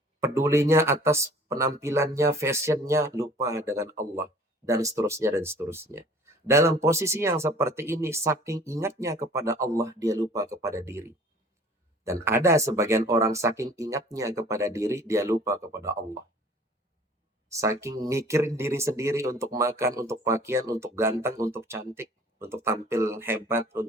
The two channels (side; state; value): both; normal; correlation 0.50